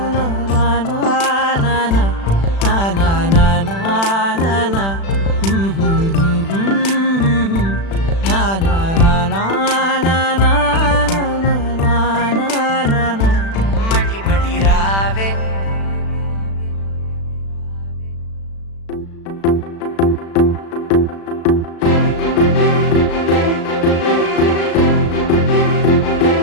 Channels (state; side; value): late; right; 36 ms